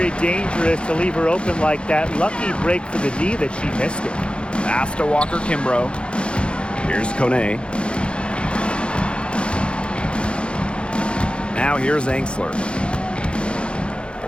dangerous to leave her open like that. Lucky break for the D that she missed it. Pass to Walker Kimbrough. Here's Kone. Now here's Angsler.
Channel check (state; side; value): late; right; 0.056 ms